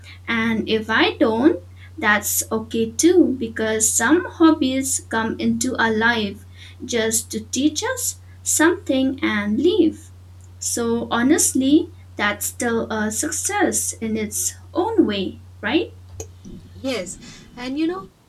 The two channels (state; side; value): identical; both; correlation 1.00